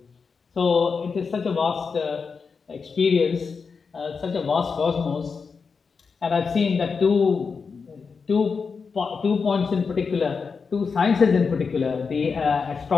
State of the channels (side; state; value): right; quieter; 5.3 dB